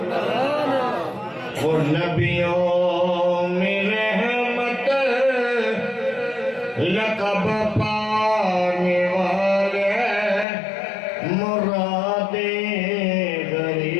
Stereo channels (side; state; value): right; drops out; at 10.5 s